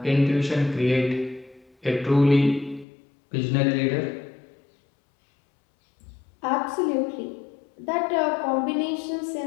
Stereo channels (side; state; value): right; drops out; at 2.9 s